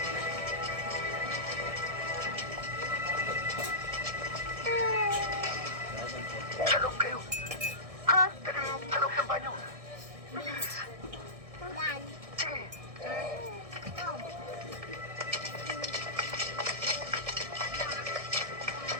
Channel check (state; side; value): late; left; 1.6 ms